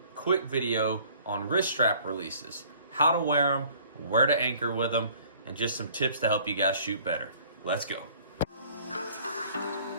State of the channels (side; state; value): both; inverted; correlation -0.54